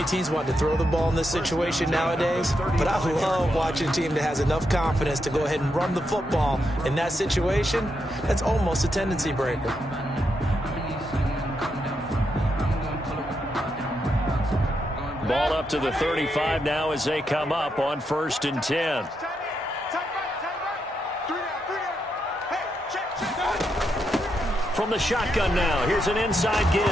teams want to throw the ball in this situation nowadays, but I love watching a team that has enough confidence to go ahead and run the football. In that situation, that's almost a tendency breaker. Ball up to the 35 now as they come up on 1st and 10. From the shotgun now, here's an inside give.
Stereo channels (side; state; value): both; normal; correlation 0.82